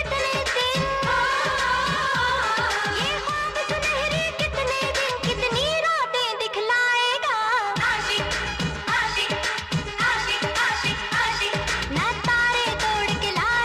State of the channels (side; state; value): both; identical; correlation 1.00